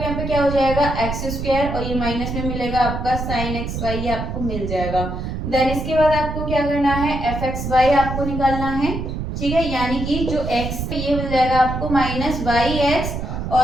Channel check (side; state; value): right; noise; rumble, 4 dB below the sound